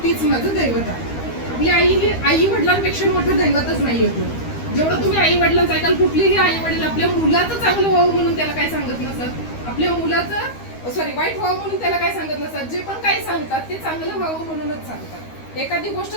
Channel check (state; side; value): late; right; 13 ms